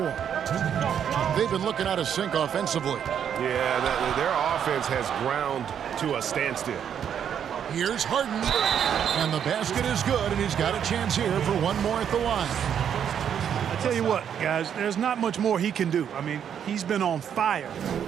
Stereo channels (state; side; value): quieter; left; 8.6 dB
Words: They've been looking out of sync offensively. Yeah, their offense has ground to a standstill. Here's Harden. And the basket is good, and he's got a chance here for one more at the line. I tell you what, guys, there's not much more he can do. I mean, he's been on fire,